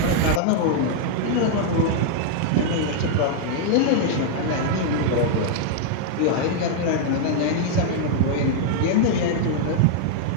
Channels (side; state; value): both; different; correlation -0.01